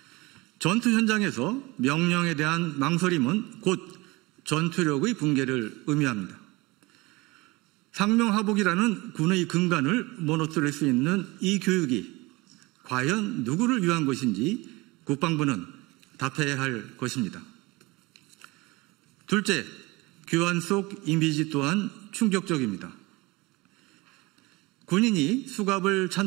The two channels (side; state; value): left; quieter; 23.1 dB